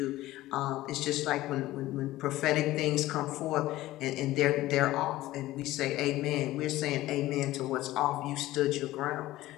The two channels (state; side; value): quieter; right; 16.5 dB